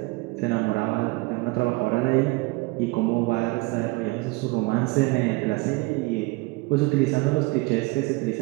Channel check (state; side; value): quieter; left; 24.3 dB